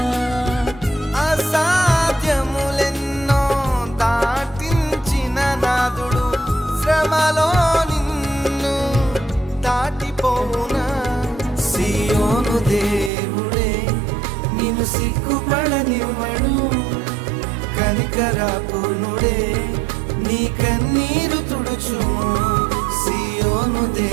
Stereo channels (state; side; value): drops out; left; at 13.1 s